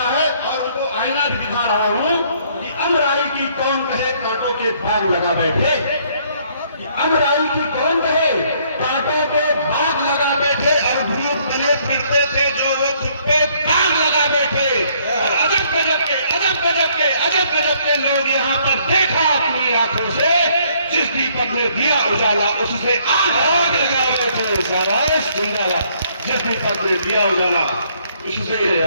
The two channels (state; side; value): inverted; both; correlation -0.65